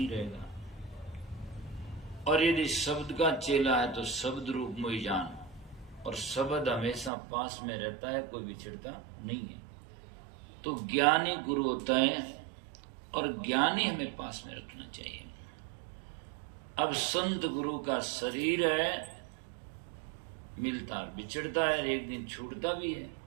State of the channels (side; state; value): left; drops out; at 7.1 s